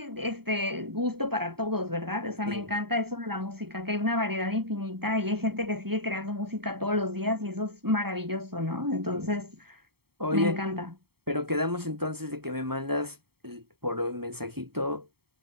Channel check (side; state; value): left; late; 0.95 ms